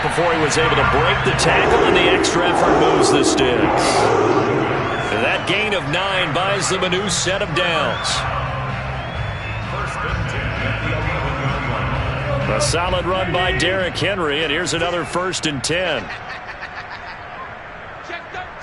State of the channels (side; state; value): both; identical; correlation 1.00